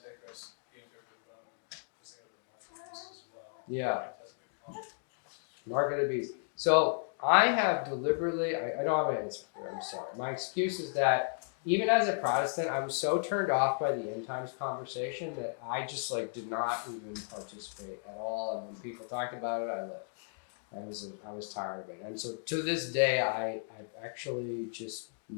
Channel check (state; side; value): silent; right; digital silence